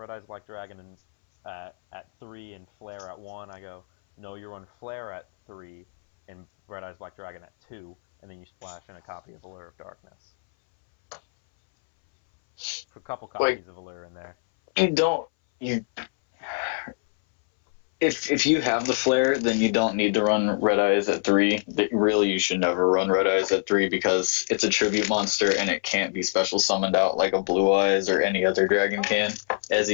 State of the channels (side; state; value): right; silent; 62 dB below the other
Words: Eyes Black Dragon at 3 and Flare at 1. I go, no, you run Flare at 3 and Red Eyes Black Dragon at 2, and then you splash in a copy of Allure of Darkness. Put a couple Like copies of Allure in there. you don't you if you have the flare, then you don't need to run Red Eyes at 3. Really, you should never run Red Eyes at 3 because it's a tribute monster and it can't be special summoned out like a Blue Eyes or any other dragon Oh, can as